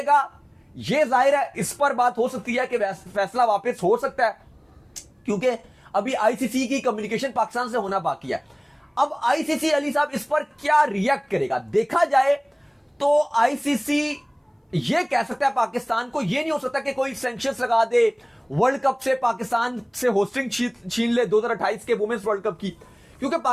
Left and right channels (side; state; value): both; identical; correlation 1.00